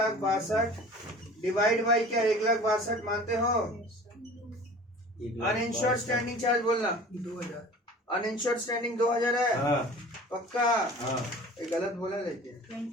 डिवाइड बाई क्या? 1,62,000 मानते हो? अनइंश्योर्ड स्टैंडिंग चार्ज बोलना। 2000। अनइंश्योर्ड स्टैंडिंग 2000 है। हाँ पक्का? हाँ। ये गलत बोला लेकिन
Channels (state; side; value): normal; both; correlation 0.43